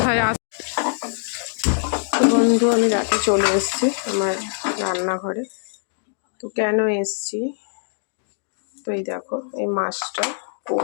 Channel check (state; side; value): silent; right; 64 dB below the other